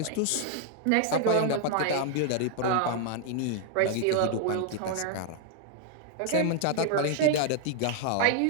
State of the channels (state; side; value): different; both; correlation 0.00